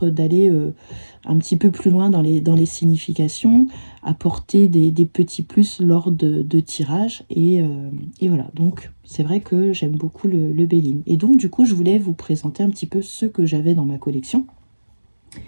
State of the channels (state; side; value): inverted; both; correlation -1.00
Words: d'aller un petit peu plus loin dans les significations, apporter des petits plus lors de tirages, et voilà. Donc c'est vrai que j'aime beaucoup le Béline. Et donc du coup je voulais vous présenter un petit peu ceux que j'avais dans ma collection.